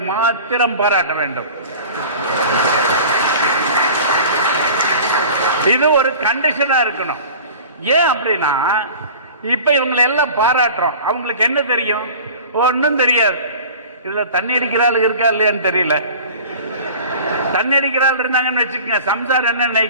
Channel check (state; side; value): inverted; both; correlation -0.41